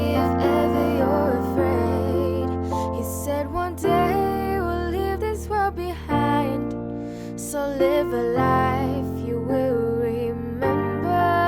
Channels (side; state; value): both; identical; correlation 1.00